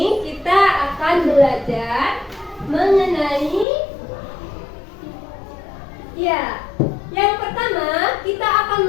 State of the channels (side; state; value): right; drops out; at 3.7 s